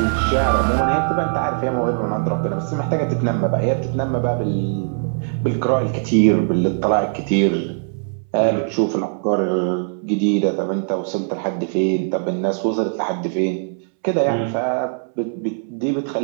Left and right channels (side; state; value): left; silent; 65 dB below the other